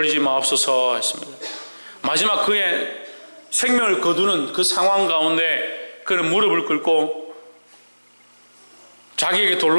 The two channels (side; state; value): both; inverted; correlation -1.00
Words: 마옵소서 했습니다. 마지막 그의 생명을 거두는 그 상황 가운데 그는 무릎을 꿇고 자기에게